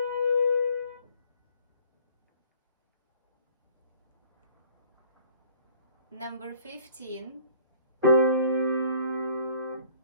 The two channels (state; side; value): inverted; both; correlation -0.56